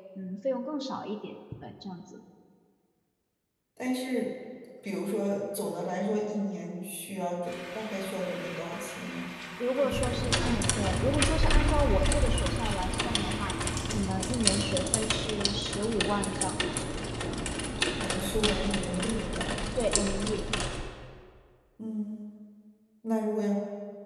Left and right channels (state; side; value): identical; both; correlation 1.00